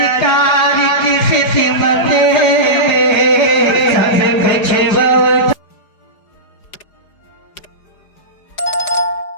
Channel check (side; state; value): right; late; 4.9 ms